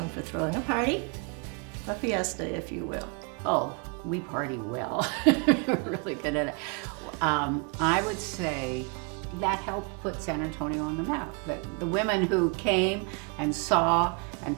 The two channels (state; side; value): quieter; left; 35.8 dB